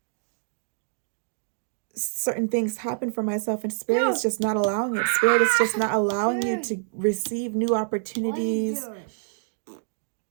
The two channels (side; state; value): left; silent; digital silence